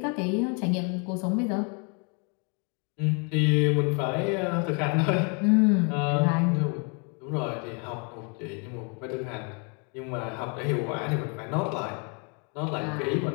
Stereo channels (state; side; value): quieter; right; 35.8 dB